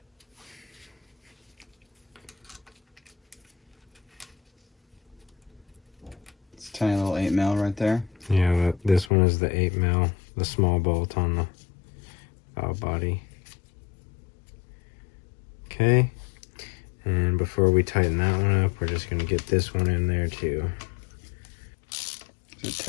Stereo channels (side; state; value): right; drops out; at 9.1 s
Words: It's a tiny little 8mm right there. Yeah, this one is the 8mm, the small bolt on the valve body. Okay, and before we tighten that one up, we're just going to get this one in there too. Is it